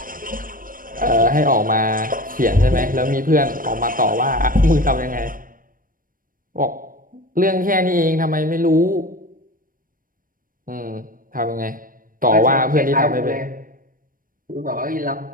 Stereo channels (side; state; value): left; late; 0.40 ms